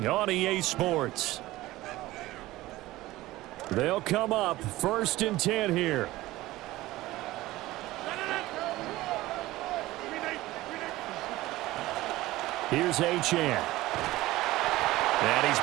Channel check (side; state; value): left; quieter; 17.6 dB